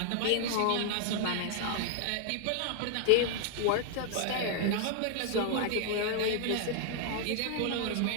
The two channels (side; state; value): both; different; correlation 0.00